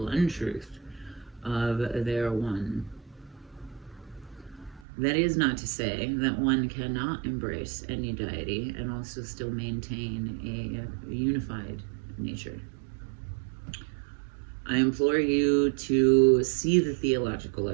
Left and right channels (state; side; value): drops out; left; at 4.9 s